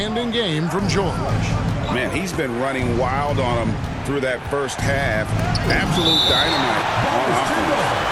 game from George. Man, he's been running wild on him through that first half. Absolute dynamite on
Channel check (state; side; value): identical; both; correlation 1.00